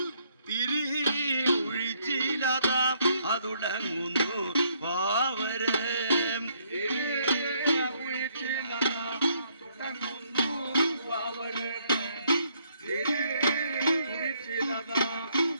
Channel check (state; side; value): inverted; both; correlation -0.69